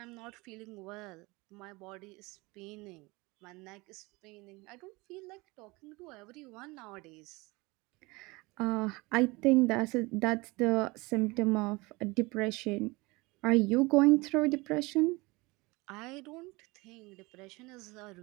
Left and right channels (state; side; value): quieter; left; 23.9 dB